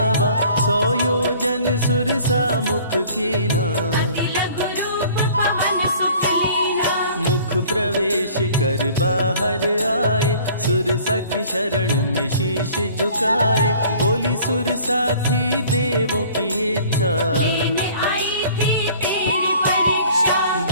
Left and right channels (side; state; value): both; inverted; correlation -0.51